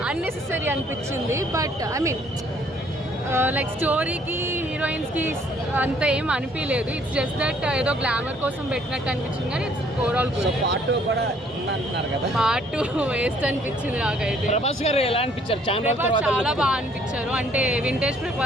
అన్నెసెసరీ అనిపించింది, బట్ ఐ మీన్ లైక్ స్టోరీకి హీరోయిన్స్కి అంత ఏం అనిపించలేదు. ఇట్స్ జస్ట్ దట్ ఏదో గ్లామర్ కోసం పెట్టినట్టు అనిపించింది, కానీ ఇట్స్ ఓవరాల్ గుడ్. పార్ట్ 2 కూడా ఉందంటున్నారు కదా? పార్ట్ 2 వేస్ట్ అనిపించింది నాకైతే. ప్రభాస్ గారు ఎలా అనిపించారు? చాలా బాగా అనిపించారు, అంటే వింటేజ్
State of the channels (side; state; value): both; normal; correlation 0.62